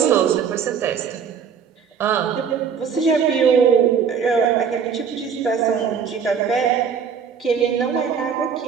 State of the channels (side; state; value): left; quieter; 6.8 dB